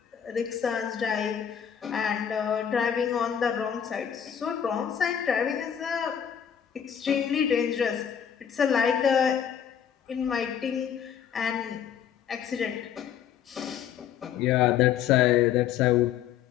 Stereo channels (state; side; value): quieter; right; 8.8 dB